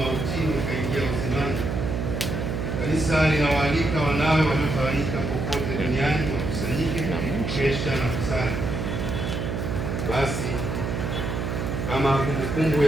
akaingia uzimani. Kanisa linawaalika wanawe waliotawanyika popote duniani wakusanyike kukesha na kusali. Basi kama kumbukumbu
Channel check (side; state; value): right; noise; hum, 2 dB below the sound